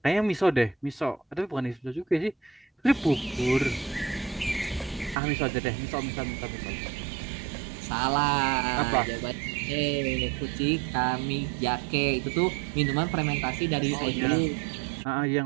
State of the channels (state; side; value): drops out; left; at 5.2 s